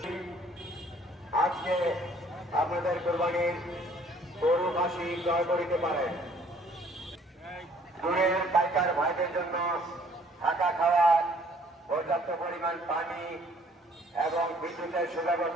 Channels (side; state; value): both; normal; correlation 0.59